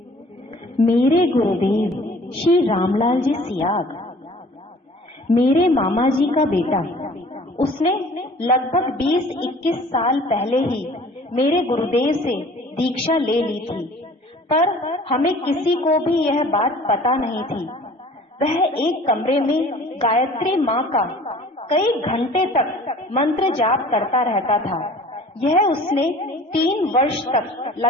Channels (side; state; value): both; normal; correlation 0.49